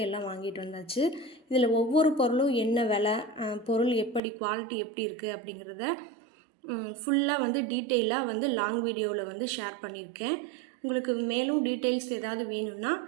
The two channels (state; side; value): drops out; left; at 4.2 s